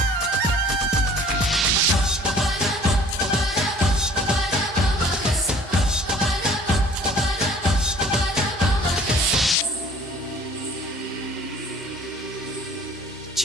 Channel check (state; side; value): normal; both; correlation 0.51